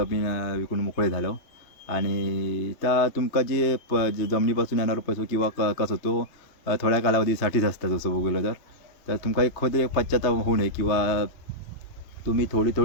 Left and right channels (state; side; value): late; right; 3.2 ms